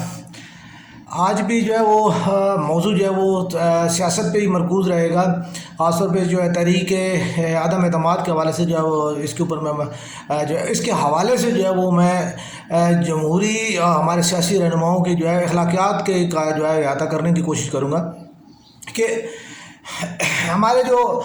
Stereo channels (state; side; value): identical; both; correlation 1.00